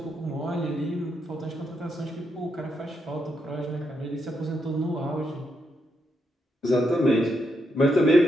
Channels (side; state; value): both; normal; correlation 0.80